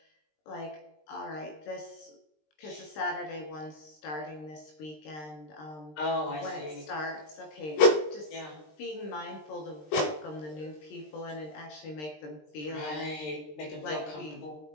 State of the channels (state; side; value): late; right; 20 ms